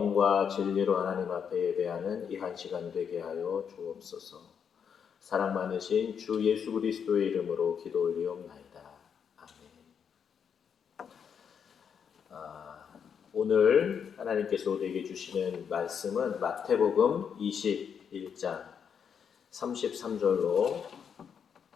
진리로 하나님 앞에 예배하는 이 한 시간 되게 하여 주옵소서. 사랑 많으신 주 예수 그리스도의 이름으로 기도 올리옵나이다. 아멘. 오늘 하나님께서 우리에게 주시는 말씀은 마태복음 21장 33절로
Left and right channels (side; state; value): right; quieter; 7.3 dB